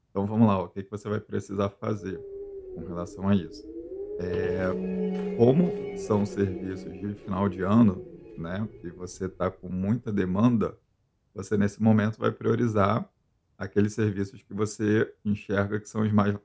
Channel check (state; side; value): identical; both; correlation 1.00